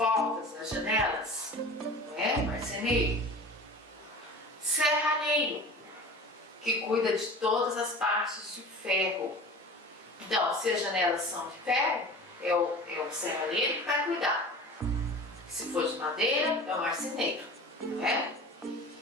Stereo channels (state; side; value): normal; both; correlation 0.38